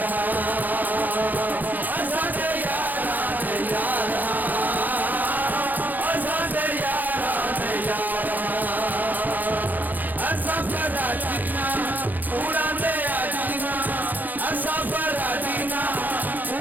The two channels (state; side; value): late; left; 0.084 ms